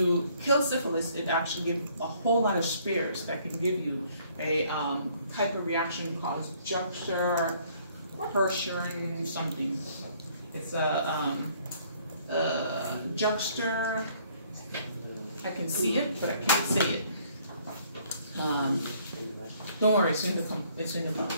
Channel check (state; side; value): inverted; both; correlation -0.62